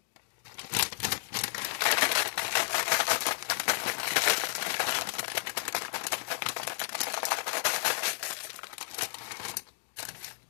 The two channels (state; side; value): silent; right; digital silence